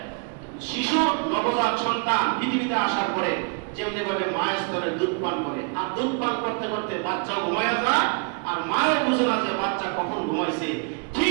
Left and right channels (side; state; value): left; quieter; 37.1 dB